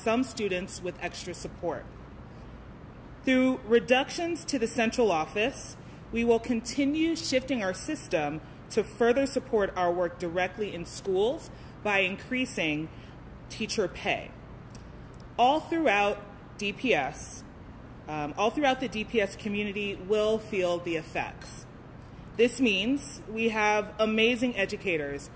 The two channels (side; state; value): both; identical; correlation 1.00